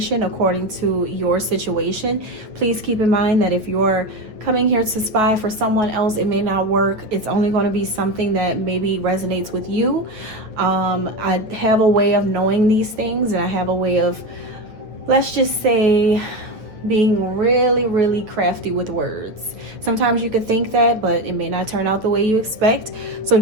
according to your situation. Please keep in mind that if you're coming here to spy for someone else, it may not work. It's only going to be something that maybe resonates with you. I have a way of knowing these things, and I have a way of, let's just say, being really crafty with words. Sometimes you could think that, but it may not turn out the way you expect. So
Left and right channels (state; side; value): late; left; 8.9 ms